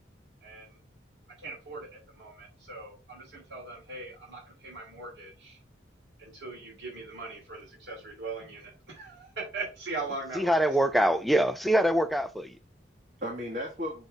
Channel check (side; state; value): both; normal; correlation 0.78